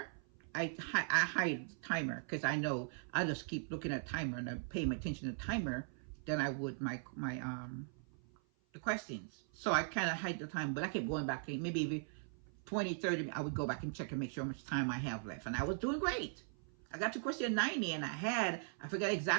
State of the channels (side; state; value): left; silent; 51 dB below the other